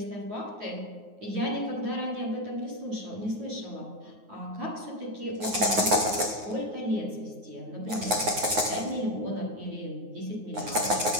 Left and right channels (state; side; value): late; left; 9.5 ms